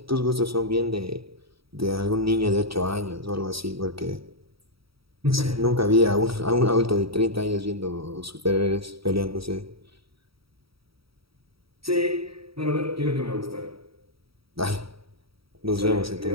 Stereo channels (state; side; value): late; left; 0.76 ms